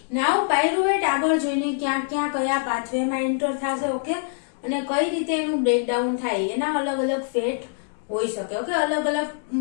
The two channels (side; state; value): right; silent; digital silence